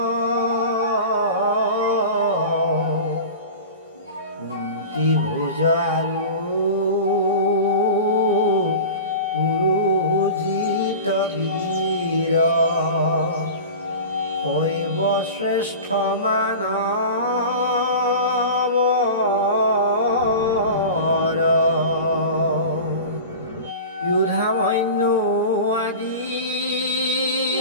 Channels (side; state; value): both; inverted; correlation -0.33